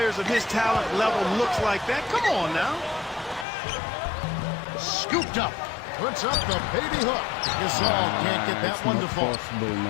of his talent level looks like that. Come on now. Scooped up. Puts up the baby hook. Gasol can't get that one to fall.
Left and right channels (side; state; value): right; drops out; at 3.5 s